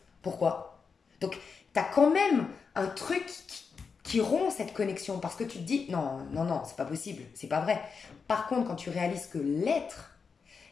Pourquoi? Donc, tu as quand même un truc qui rompt cette connexion parce que tu te dis, non, non, non, c'est pas possible, c'est pas vrai. Par contre, quand tu réalises que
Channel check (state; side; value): quieter; right; 5.4 dB